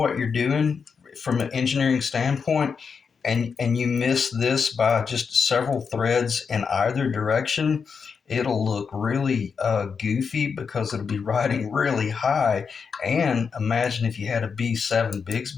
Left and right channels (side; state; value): right; quieter; 5.9 dB